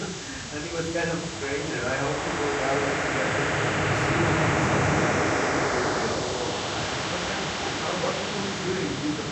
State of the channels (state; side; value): identical; both; correlation 1.00